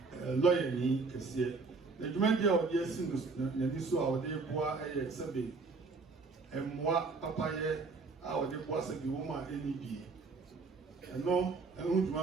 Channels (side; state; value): left; quieter; 4.2 dB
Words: ni kesiye. The Jumandia of the Sinus, Naniso, our dear boy, I exhibit, and moi, Papa, our dear boss, and the woman, NEB. And no, I won't